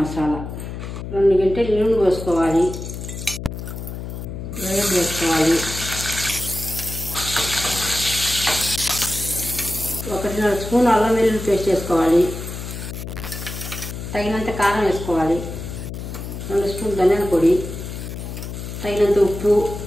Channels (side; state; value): left; noise; hum, 8 dB below the sound